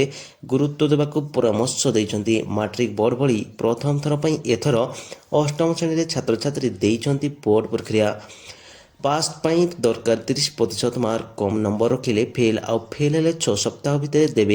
गुरुत्व देवाक परामर्श दैछन्ती मैट्रिक बोर्ड भली प्रथम थर पई एथर अष्टम श्रेणी रे छात्र छात्री दैछन्ती बोर्ड प्रक्रिया पास पाई दरकार 30% मार्क कम नंबर रखिले फेल आउ फेल हेले 6 सप्ताह भितर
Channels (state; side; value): identical; both; correlation 1.00